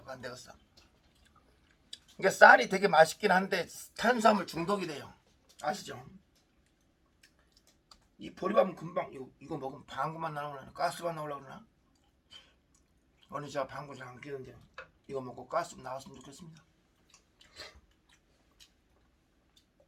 안 되겠어. 이게 쌀이 되게 맛있긴 한데 탄수화물 중독이 돼요. 아시죠? 이 보리밥은 금방 이거 먹으면 방구만 나오려나? 가스만 나오려고 그러나? 오늘 제가 방구 잘 안 끼는데 이거 먹고 가스 나왔으면 좋겠습니다.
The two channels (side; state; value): both; identical; correlation 1.00